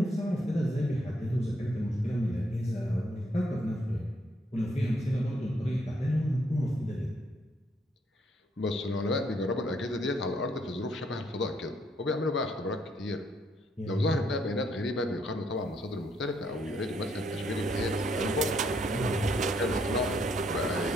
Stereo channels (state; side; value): normal; both; correlation 0.71